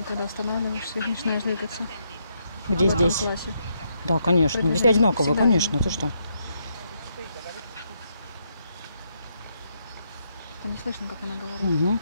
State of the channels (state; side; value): inverted; both; correlation -0.77